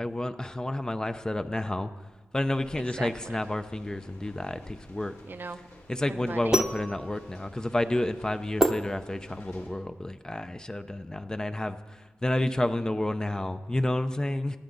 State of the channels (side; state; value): both; normal; correlation 0.93